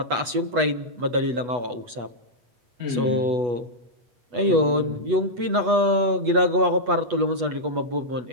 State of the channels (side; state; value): left; late; 8.2 ms